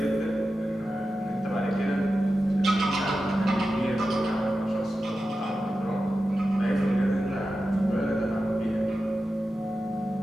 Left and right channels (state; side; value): normal; both; correlation 0.92